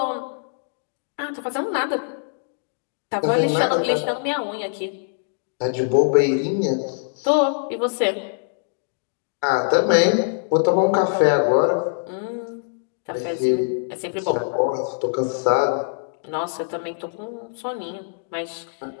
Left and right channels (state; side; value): silent; right; digital silence